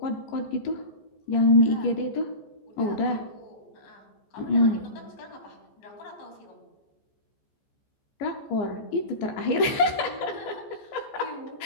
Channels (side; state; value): right; late; 14 ms